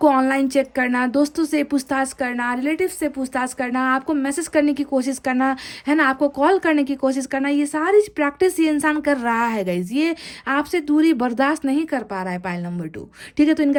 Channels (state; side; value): identical; both; correlation 1.00